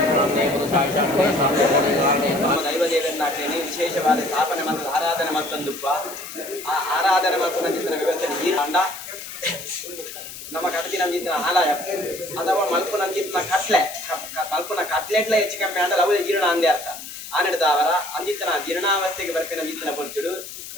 ಪುರುಷಾಯ ಶಾಂತೇ ಶಾಂತೇ ದೈವದೇವರನ್ನಾಗ್ತೇನೆ ವಿಶೇಷವಾದ ಸ್ಥಾಪನೆ ಮತ್ತು ಆರಾಧನೆ ಮತ್ತೊಂದುಪ್ಪ ಆ ಆರಾಧನೆ ಮತ್ತು ನಂಜಿನ ವ್ಯವಸ್ಥೆ ಈ ಅಂಡ ನಮ್ಮ ಕಡತಿ ನಂಜಿನ ಆಲಯ ಅಥವಾ ಮಲ್ಪು ನಂಜಿನ ಕಟ್ಲೆ ಮಲ್ಪುನ ಕಟ್ಲೆಟ್ಲ ಹೆಚ್ಚು ಕಮ್ಮಿ ಅಂದ್ರೆ ಅವು ಜೀರ್ಣ ಅಂದೇ ಅರ್ಥ ಆನೆಡ್ದವರ ಅಂದಿತ್ತನ ಜೀರ್ಣಾವಸ್ಥೆಗೆ ಬರ್ಪಿನ ಅಂದಿತ್ತನ ಪೊರ್ತುಡು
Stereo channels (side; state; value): left; noise; hiss, 12 dB below the sound